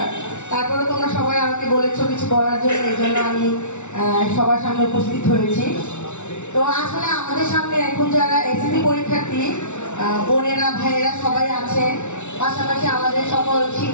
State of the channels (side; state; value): right; late; 0.83 ms